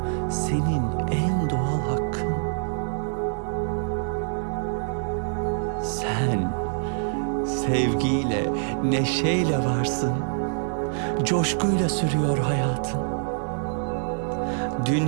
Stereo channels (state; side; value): silent; left; digital silence